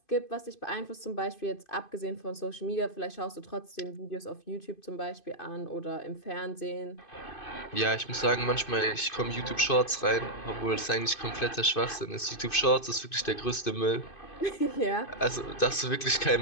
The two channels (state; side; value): late; right; 2.5 ms